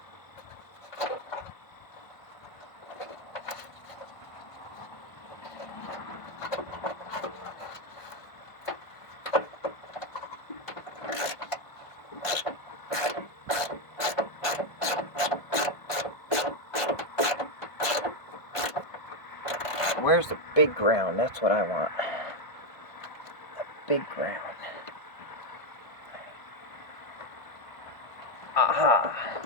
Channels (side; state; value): right; late; 1.5 ms